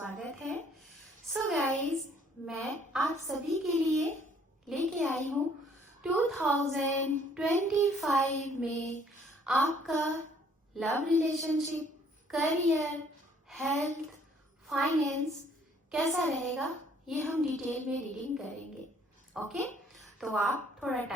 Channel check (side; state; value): both; normal; correlation 0.61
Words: है। सो गाइस, मैं आप सभी के लिए लेके आई हूँ 2025 में आपका love relationship, career, health, finance कैसा रहेगा, ये हम डिटेल में रीडिंग करेंगे। ओके, तो आप थोड़ा